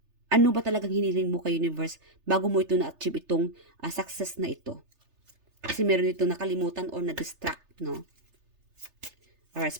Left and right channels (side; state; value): left; late; 3.3 ms